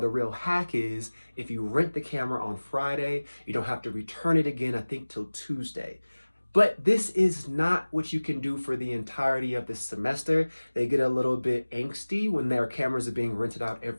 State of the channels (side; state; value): both; inverted; correlation -1.00